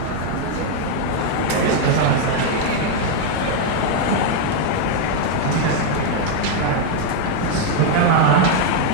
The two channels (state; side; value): different; both; correlation 0.01